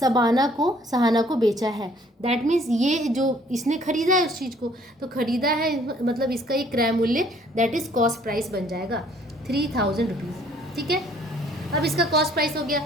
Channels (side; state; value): both; normal; correlation 0.60